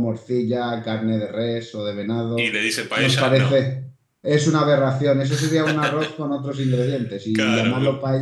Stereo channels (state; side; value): identical; both; correlation 1.00